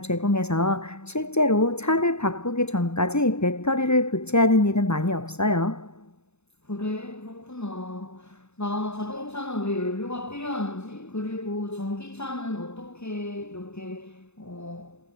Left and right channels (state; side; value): late; right; 0.81 ms